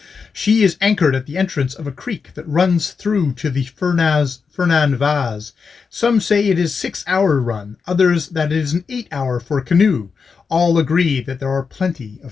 She is anchored at the entrance of a creek that runs through to the Fernan Vaz. Some say it is a 6-hour run, others that it is an 8-hour for a canoe. All agree that there are plenty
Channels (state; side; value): quieter; right; 5.4 dB